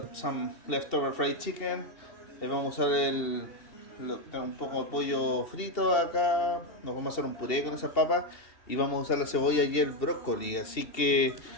some leftover fried chicken. Vamos a usar un poco de pollo frito acá. Nos vamos a hacer un puré con esas papas y vamos a usar la cebolla y el brócoli. Así que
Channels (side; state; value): right; late; 2.7 ms